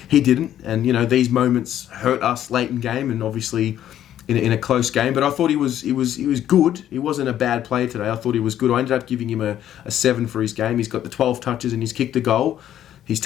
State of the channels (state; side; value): quieter; right; 11.3 dB